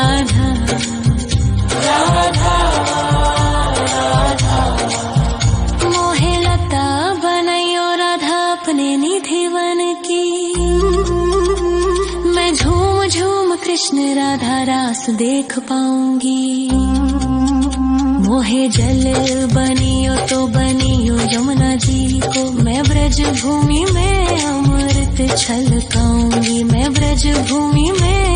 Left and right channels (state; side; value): identical; both; correlation 1.00